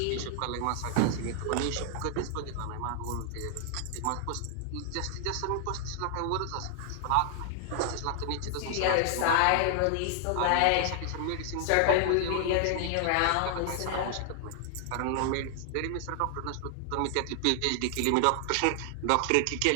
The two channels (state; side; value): different; both; correlation 0.00